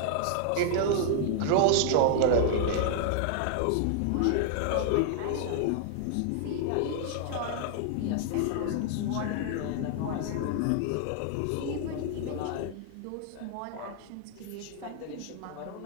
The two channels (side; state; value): both; different; correlation -0.01